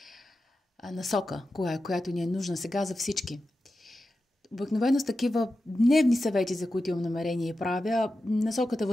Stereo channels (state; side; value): normal; both; correlation 0.91